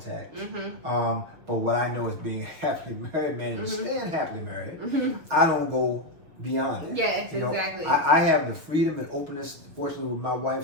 But what I know is being happily married, man, and staying happily married, I don't go beyond that. Yes, exactly. I have the freedom and openness, fortunately, with my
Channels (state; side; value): late; left; 6.5 ms